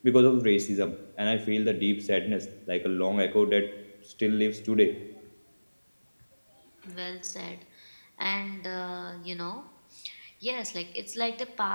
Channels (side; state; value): both; inverted; correlation -1.00